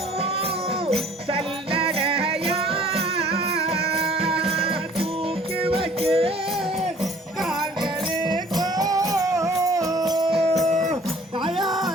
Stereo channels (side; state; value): both; normal; correlation 0.53